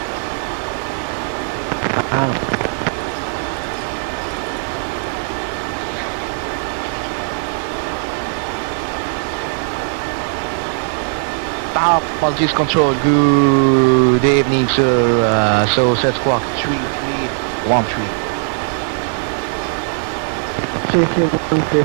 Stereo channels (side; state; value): left; silent; 63 dB below the other